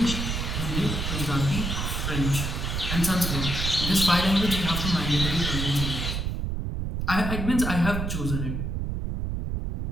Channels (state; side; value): noise; right; rumble, 2 dB below the sound